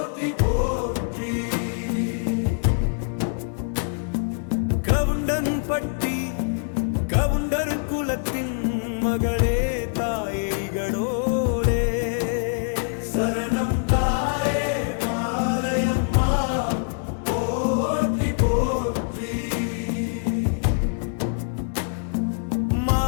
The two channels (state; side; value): silent; right; digital silence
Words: போற்றி. கவுண்டன் பட்டி கவுண்டர் குலத்தின் மகளே தாயே இகடோரே சரணம் தாயே மாலையம்மா போற்றி போற்றி.